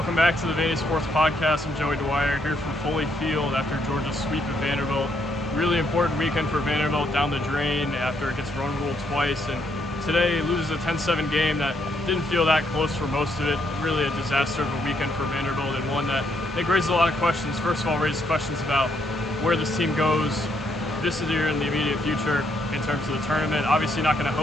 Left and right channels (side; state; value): both; normal; correlation 0.74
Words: back to the Vandy Sports Podcast. I'm Joey Dwyer here from Foley Field after Georgia's sweep of Vanderbilt. Really important weekend for Vanderbilt down the drain after it gets run ruled twice. And today loses a 10-7 game that didn't feel that close for most of it. Really a disaster of a weekend for Vanderbilt, and one that I think raises a lot of questions. First of all, raises questions about where this team goes this year in the immediate future in terms of the tournament. Obviously not going to